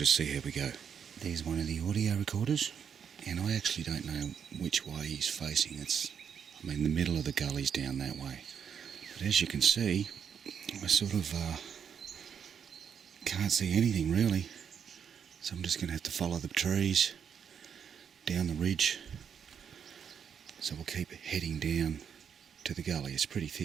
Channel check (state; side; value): quieter; left; 7.6 dB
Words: see how we go. There's one of the audio recorders, and I actually don't know which way he's facing. The middle of the gully's down that way, but as you can see, I sort of can't see anything really, so I'm just going to have to follow the trees down the ridge. So we'll keep heading down to the gully. It's pretty